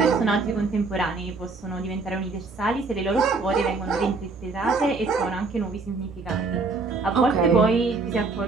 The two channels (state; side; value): quieter; left; 4.0 dB